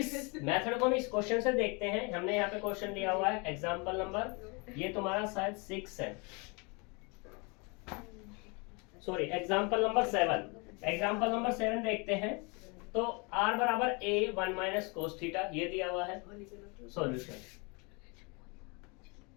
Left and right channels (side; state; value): right; quieter; 30.6 dB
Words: को हम इस क्वेश्चन से देखते हैं। हमने यहाँ पे क्वेश्चन दिया हुआ है एग्जांपल नंबर, ये तुम्हारा शायद 6 है, sorry example number 7। Example number 7 देखते हैं। तो r बराबर a 1 माइनस कोस थीटा ये दिया हुआ है सॉल्यूशन।